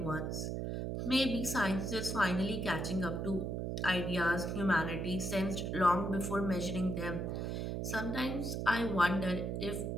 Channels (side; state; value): right; noise; hum, 2 dB below the sound